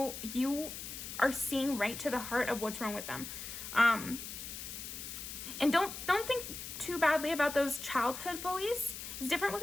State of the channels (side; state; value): left; noise; hiss, 8 dB below the sound